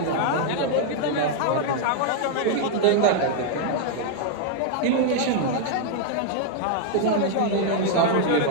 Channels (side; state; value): both; different; correlation 0.00